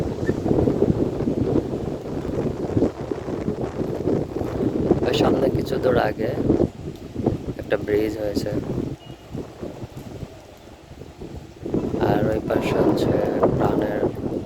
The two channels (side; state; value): both; identical; correlation 1.00